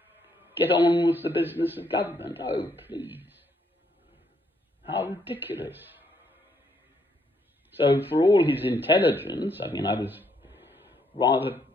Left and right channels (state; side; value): normal; both; correlation 0.72